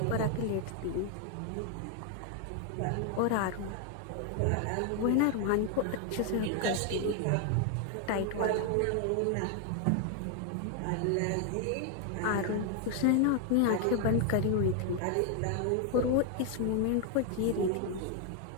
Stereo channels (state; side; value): different; both; correlation 0.00